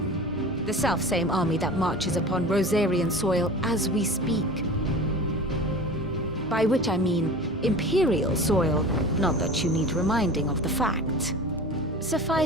The self-same army that marches upon Rosarian soil as we speak. By which I mean Imperial soil, not that you need reminding of the fact.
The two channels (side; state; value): both; normal; correlation 0.35